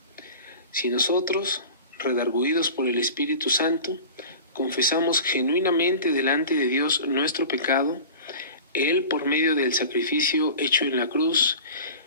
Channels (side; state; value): both; inverted; correlation -0.37